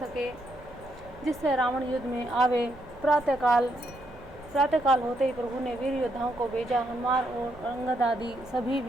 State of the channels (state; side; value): noise; right; rumble, 21 dB below the sound